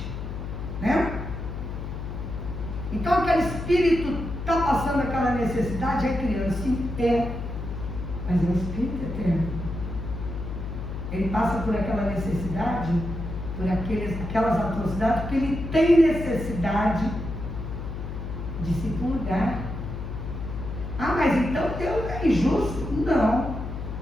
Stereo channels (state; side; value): noise; left; hum, 6 dB below the sound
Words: né? Então aquele espírito está passando aquela necessidade, é criança, sim, mas é um espírito eterno. Ele passa por aquela necessidade, por aquelas atrocidades, porque ele tem necessidade de se purgar. Ah, mas então Deus é injusto? Não.